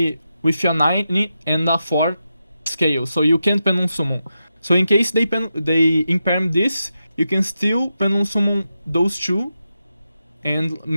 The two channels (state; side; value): inverted; both; correlation -0.88